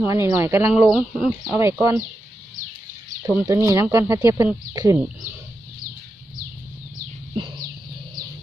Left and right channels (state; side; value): normal; both; correlation 0.88